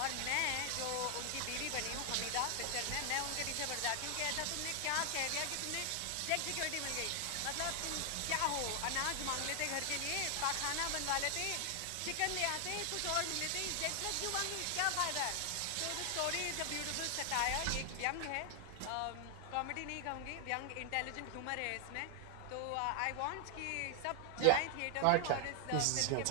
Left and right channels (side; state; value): both; different; correlation 0.00